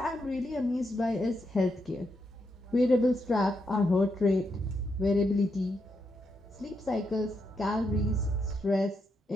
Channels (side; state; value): both; normal; correlation 0.82